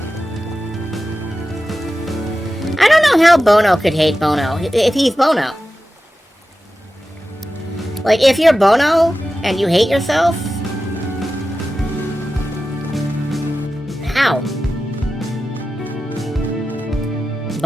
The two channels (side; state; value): both; normal; correlation 0.93